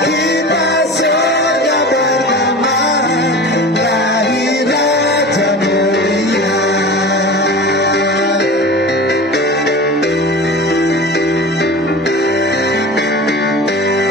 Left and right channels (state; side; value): normal; both; correlation 0.34